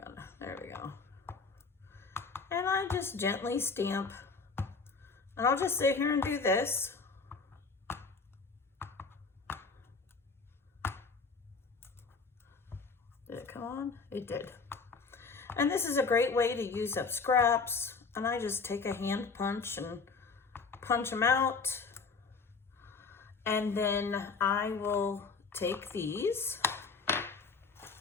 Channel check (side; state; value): right; quieter; 4.7 dB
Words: it. There we go. And I just gently stamp. And I'll just sit here and do this. Did it come on? It did. And this is a great way to use up scraps. And I just take a hand punch and punch them out. And then I will take these,